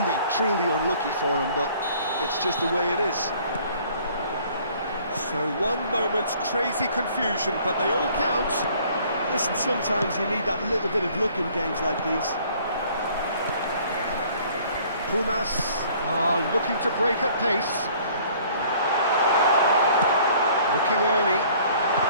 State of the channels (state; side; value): inverted; both; correlation -0.56